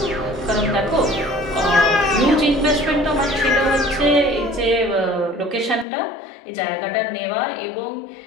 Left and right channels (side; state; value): right; drops out; at 5.9 s